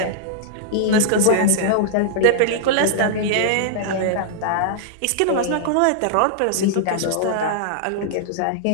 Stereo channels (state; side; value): different; both; correlation -0.02